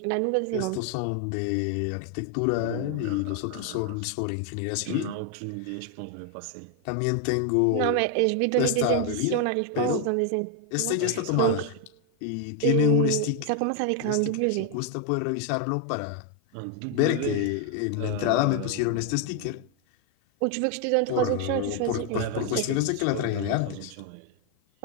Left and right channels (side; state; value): both; different; correlation 0.01